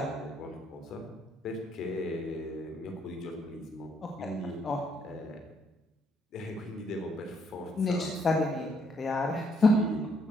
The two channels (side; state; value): both; normal; correlation 0.71